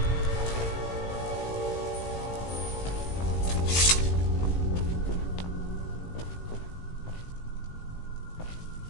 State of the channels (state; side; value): late; right; 17 ms